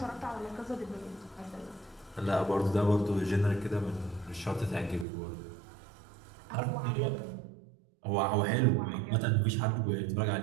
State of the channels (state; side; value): drops out; left; at 5.1 s